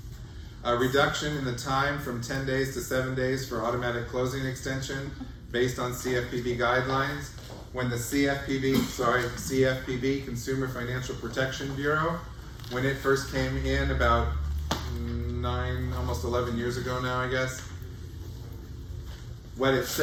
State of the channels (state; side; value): identical; both; correlation 1.00